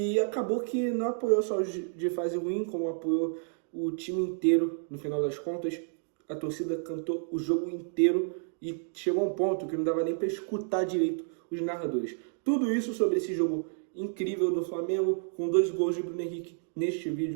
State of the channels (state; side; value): silent; left; digital silence